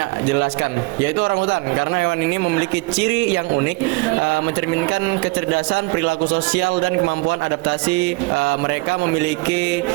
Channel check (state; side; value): quieter; left; 25.2 dB